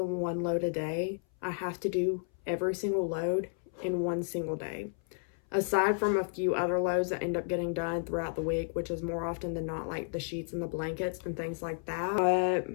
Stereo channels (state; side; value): silent; right; 56 dB below the other